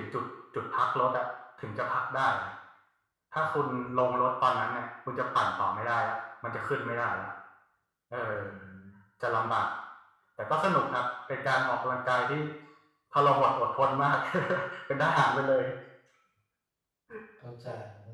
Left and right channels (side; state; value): both; identical; correlation 1.00